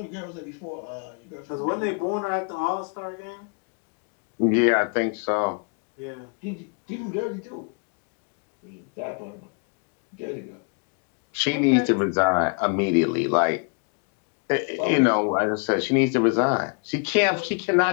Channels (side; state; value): right; quieter; 38.5 dB